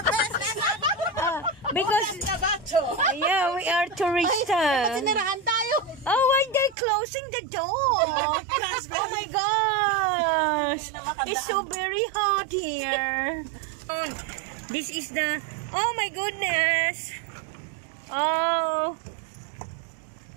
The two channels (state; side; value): drops out; left; at 6.8 s